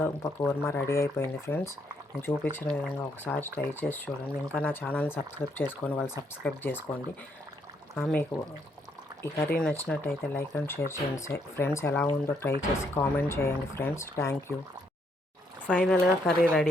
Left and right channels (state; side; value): normal; both; correlation 0.73